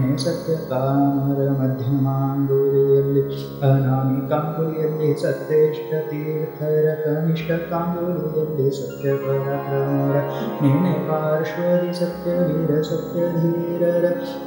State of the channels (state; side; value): identical; both; correlation 1.00